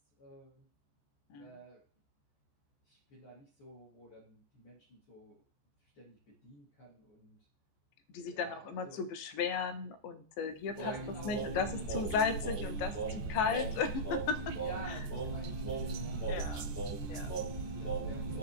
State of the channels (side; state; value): right; late; 14 ms